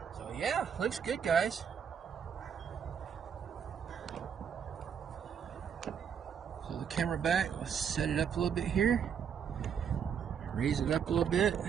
So yeah, looks good, guys. So the camera back, let's set it up a little bit here. Raise it up a little bit.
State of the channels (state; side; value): quieter; left; 7.6 dB